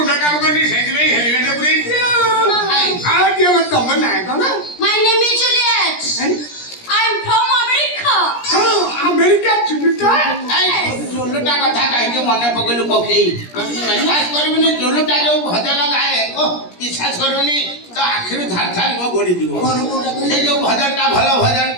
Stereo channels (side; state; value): right; late; 17 ms